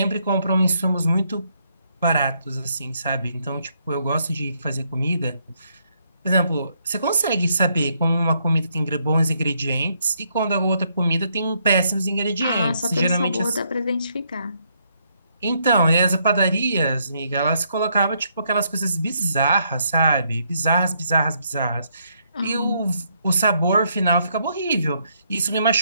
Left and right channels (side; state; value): both; inverted; correlation -0.74